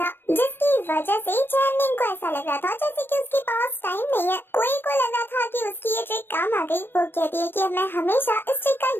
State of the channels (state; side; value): late; right; 0.099 ms